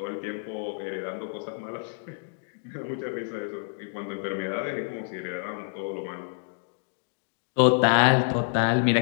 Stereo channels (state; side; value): silent; right; digital silence